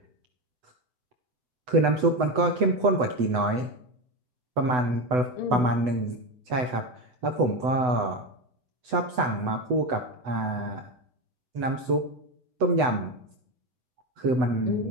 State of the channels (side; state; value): left; late; 8.0 ms